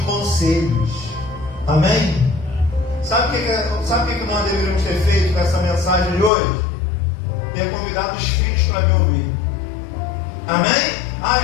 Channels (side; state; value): right; drops out; at 6.3 s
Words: conselhos. Amém? Sabe o que nós deveríamos ter feito com essa mensagem de hoje? Ter convidado os filhos para me ouvir. Amém?